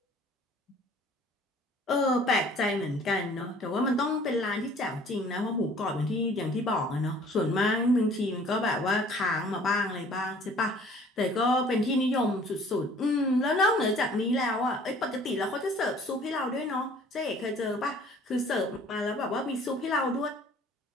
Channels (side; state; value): both; normal; correlation 0.53